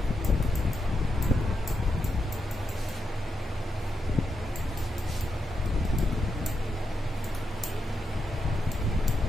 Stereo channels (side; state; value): both; normal; correlation 0.85